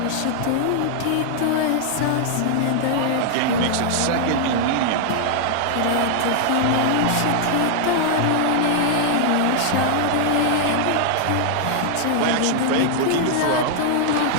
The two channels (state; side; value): different; both; correlation -0.01